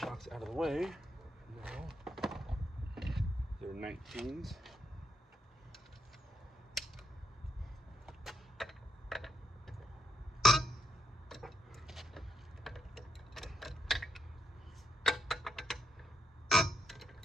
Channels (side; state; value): both; normal; correlation 0.79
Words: out of the way. Now, they're 19s.